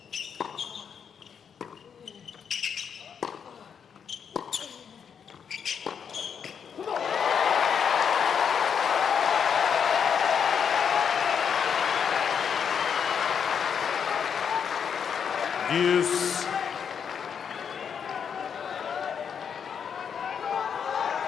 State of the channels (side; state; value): right; quieter; 7.2 dB